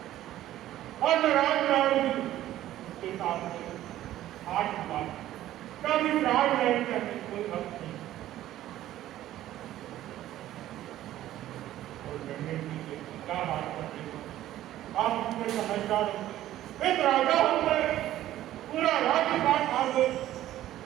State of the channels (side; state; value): left; quieter; 13.6 dB